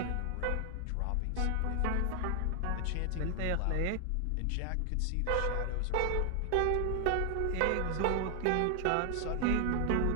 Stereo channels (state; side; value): different; both; correlation 0.00